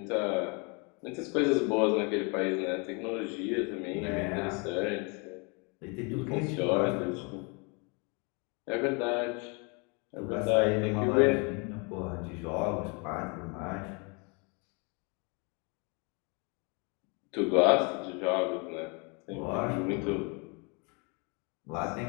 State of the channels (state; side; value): quieter; right; 32.3 dB